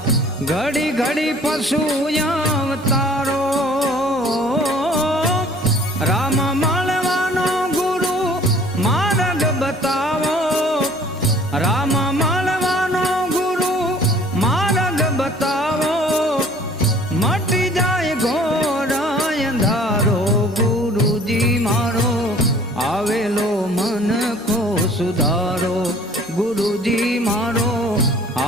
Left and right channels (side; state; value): both; normal; correlation 0.52